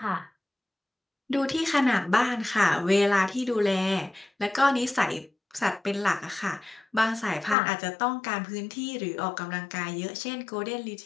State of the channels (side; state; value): right; drops out; at 7.6 s